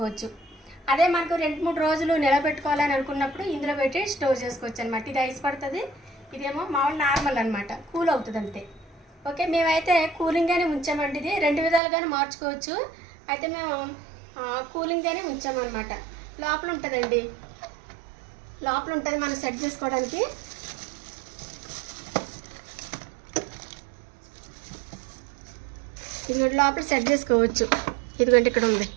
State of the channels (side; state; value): left; drops out; at 11.8 s